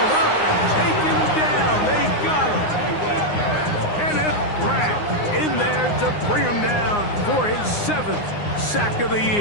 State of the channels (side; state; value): right; late; 9.7 ms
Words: up and taken down. They got him. Kenneth Grant in there to bring him down for his 7th sack of the